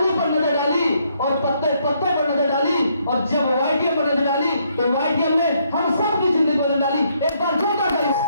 पर नजर डाली और पत्ते पत्ते पर नजर डाली, और जब वाईटीएम पर नजर डाली तो वाईटीएम ने हम सब की जिंदगी बदल डाली। एक बार जोरदार ताली।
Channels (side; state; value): both; inverted; correlation -0.71